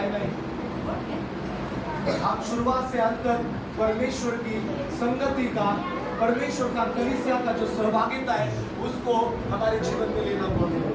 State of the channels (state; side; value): identical; both; correlation 1.00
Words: नाही। आप शुरुआत से अंत तक परमेश्वर की संगति का, परमेश्वर का कलीसिया का जो सहभागिता है उसको हमारे जीवन में लेना